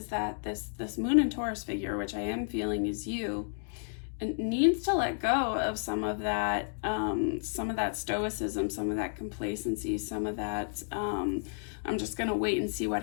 that this Moon and Taurus figure, which I am feeling is you, it needs to let go of some of that stoicism, some of that complacency, some of that I'm just gonna wait and see what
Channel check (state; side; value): silent; right; digital silence